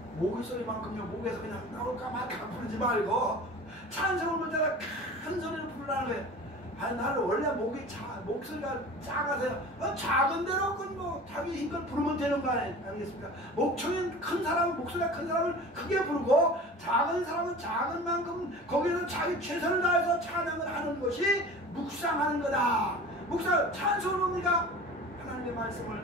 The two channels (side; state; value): both; normal; correlation 0.39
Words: 목의 소리만큼요, 목에서 그냥 나올까 말까 부르지 말고 찬송을 부를 때가 큰 소리를 부르라는 거예요. 아니 나는 원래 목소리가 작아서요. 작은 대로 뭐 자기 힘껏 부르면 되는 거 아니겠습니까? 목청이 큰 사람은 목소리가 큰 사람을 크게 부르고 작은 사람은 작은 만큼 거기서 자기 최선을 다해서 찬양을 하는 것이 묵상하는 거다. 묵상 찬송은 뭡니까? 하나님의